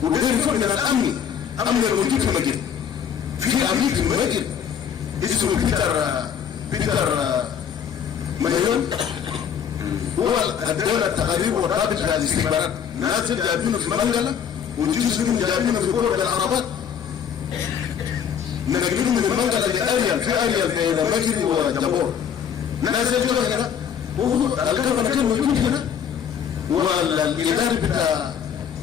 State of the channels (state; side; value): quieter; right; 8.1 dB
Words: وده يفرق من الأمن. أمن الموجود في المجال. في أمين في المجال. اسمه بيتر مليون. هو الدولة التقارير والرابط في الاستخبارات. ناس جايبينه في منغلا وجزء منهم جايبينه في قرى العربات. نقلهم من المنغلا لأريال، في أريال بين مجري وجبور. ناس يجوا هنا والقرن كان موجود هنا والإداري بتاع